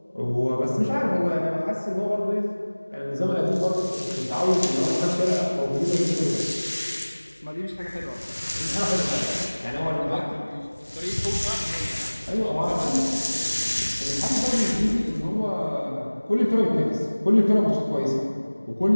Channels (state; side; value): inverted; both; correlation -1.00